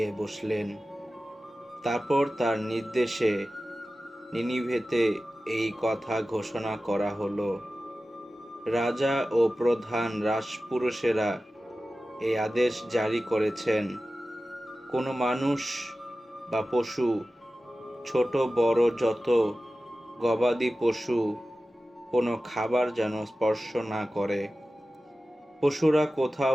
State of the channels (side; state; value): both; normal; correlation 0.95